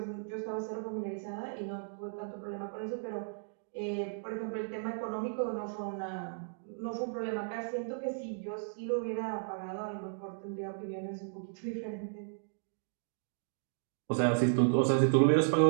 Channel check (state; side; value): silent; left; digital silence